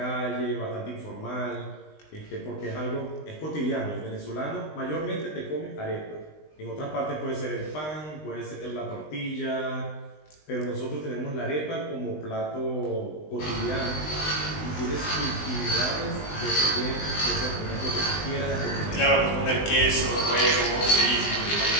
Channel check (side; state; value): right; late; 20 ms